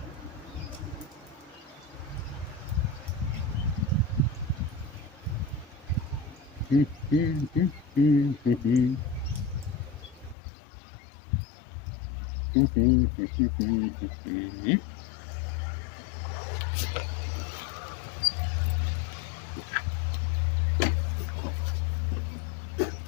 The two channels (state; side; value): drops out; right; at 10.4 s